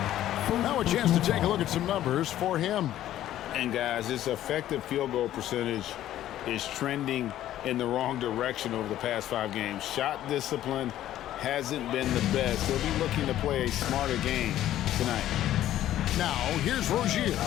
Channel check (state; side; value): quieter; right; 12.8 dB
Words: Now a chance to take a look at some numbers for him. And guys, his effective field goal percentage is trending in the wrong direction over the past 5 games. Shot discipline hasn't been the best. He'll be looking to play a smarter game tonight. Now, here's Rozier.